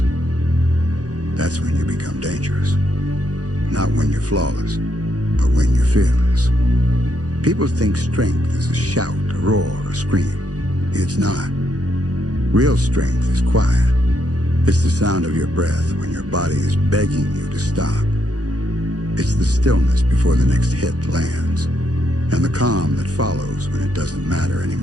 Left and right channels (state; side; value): late; left; 0.67 ms